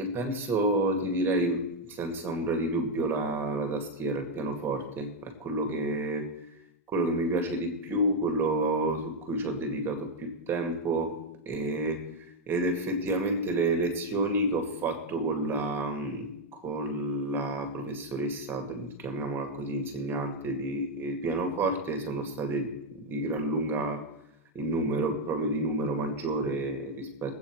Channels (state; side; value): normal; both; correlation 0.02